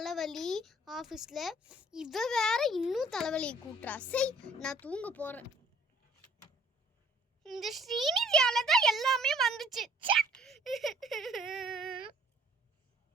ஆஃபீஸில், இவ வேற இன்னும் தலைவலியை கூட்டுறா. சரி, நான் தூங்க போகிறேன். இந்த ஸ்ரீநிதியால தான் எல்லாமே வந்துச்சு.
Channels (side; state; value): both; normal; correlation 0.57